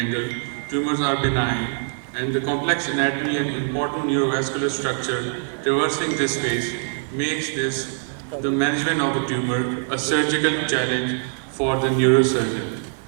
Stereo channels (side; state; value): left; silent; 59 dB below the other